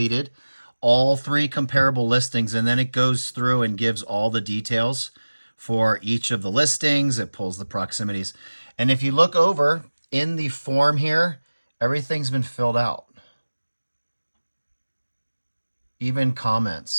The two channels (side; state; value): both; inverted; correlation -1.00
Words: all 3 comparable listings, and then it goes through and gives all the details for each of the listings. It pulls the proximities. And if you look over in the form here, everything's been filled out. Even